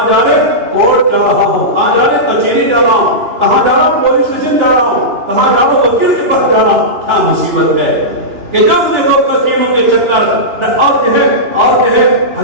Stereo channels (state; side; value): late; left; 2.9 ms